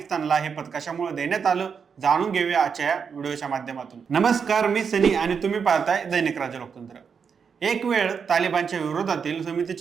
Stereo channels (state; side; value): quieter; left; 6.3 dB